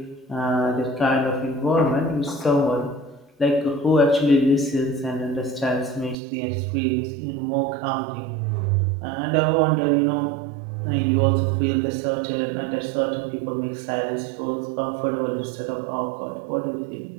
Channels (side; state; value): left; drops out; at 6.2 s